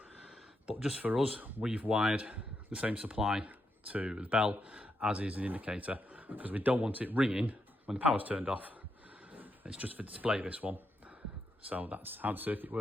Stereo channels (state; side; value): normal; both; correlation 0.82